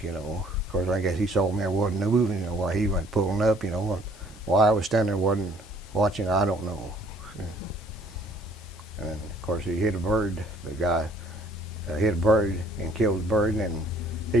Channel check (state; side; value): normal; both; correlation 0.59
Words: Of course, I guess he saw me, I wasn't moving, while he went pulling up, and why I was standing there wasn't watching, I don't know. And then, of course, he hit a bird. The guy hit a bird and killed the bird, and then